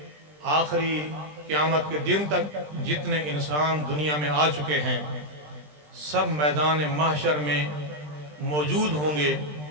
آخری قیامت کے دن تک جتنے انسان دنیا میں آ چکے ہیں، سب میدان محشر میں موجود ہوں گے۔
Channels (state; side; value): late; left; 20 ms